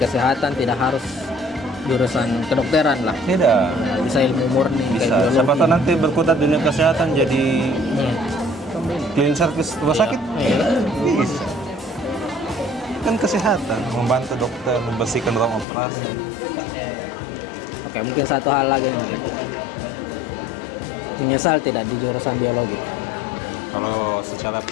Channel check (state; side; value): drops out; right; at 15.7 s